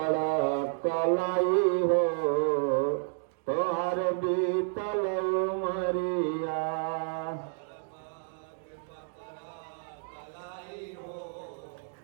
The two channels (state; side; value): silent; left; digital silence